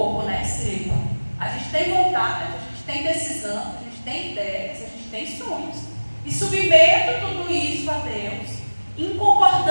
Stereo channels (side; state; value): both; inverted; correlation -1.00